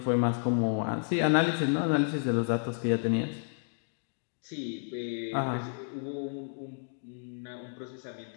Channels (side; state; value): right; silent; 57 dB below the other